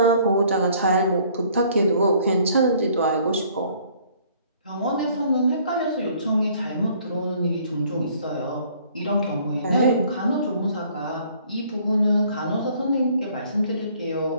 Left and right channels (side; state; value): both; inverted; correlation -0.59